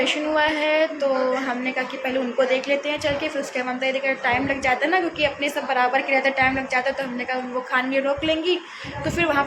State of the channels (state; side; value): identical; both; correlation 1.00